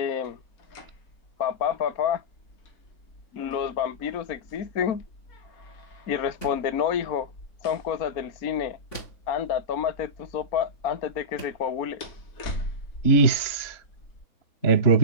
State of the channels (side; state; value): right; late; 3.5 ms